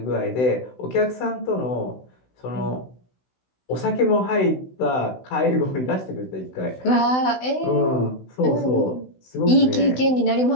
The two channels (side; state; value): right; late; 16 ms